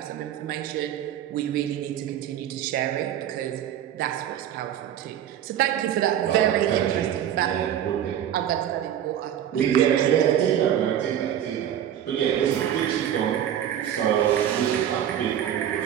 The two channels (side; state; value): left; quieter; 10.4 dB